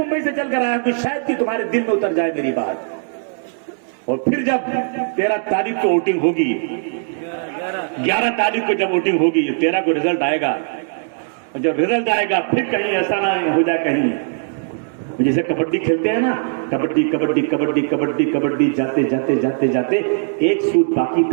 से चलकर आया कि शायद कि तुम्हारे दिल में उतर जाए मेरी बात। और फिर जब 13 तारीख को वोटिंग होगी, 11 तारीख को जब वोटिंग होगी, 13 को रिजल्ट आएगा, और जब रिजल्ट आएगा फिर कहीं ऐसा ना हो जाए, कहीं जैसे कबड्डी खेलते हैं ना, कबड्डी कबड्डी कबड्डी कबड्डी कबड्डी, जाते जाते जाते जाते एक सूट बाकी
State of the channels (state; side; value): silent; left; digital silence